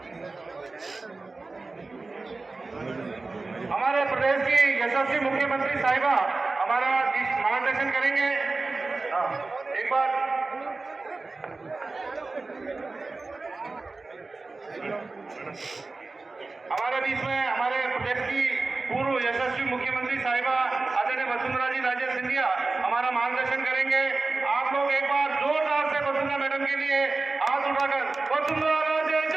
हमारे प्रदेश की यशस्वी मुख्यमंत्री साहिबा हमारा मार्गदर्शन करेंगे। एक बार हमारे बीच में हमारे प्रदेश की पूर्व यशस्वी मुख्यमंत्री साहिबा आदरणीय वसुंधरा जी राजे सिंधिया हमारा मार्गदर्शन करेंगे। आप लोग एक बार जोरदार से वसुंधरा मैडम के लिए हाथ उठाकर वसुंधरा राजे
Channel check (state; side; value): quieter; left; 3.6 dB